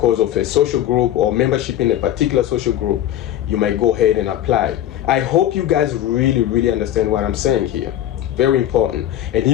of a social group or membership in a particular social group. You might go ahead and apply. I hope you guys really understand what I'm saying here. Very important. And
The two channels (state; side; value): quieter; right; 12.0 dB